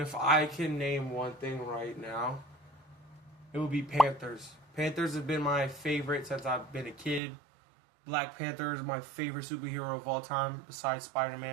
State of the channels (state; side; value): drops out; left; at 7.2 s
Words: I can name one thing right now, it would be Panthers. Panthers have been my favorite since I've been a kid. Black Panther is my favorite superhero of all time, besides